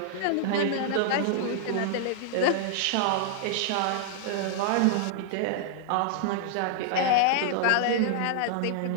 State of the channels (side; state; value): both; different; correlation -0.01